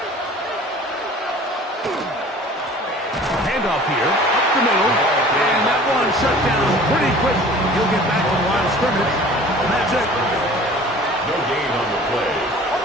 Handoff here, up the middle, and that one shut down pretty quickly. He'll get back to the line of scrimmage, and that's it. No gain on the play.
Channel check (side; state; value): both; normal; correlation 0.46